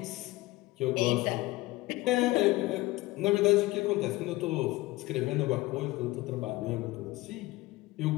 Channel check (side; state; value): right; quieter; 19.6 dB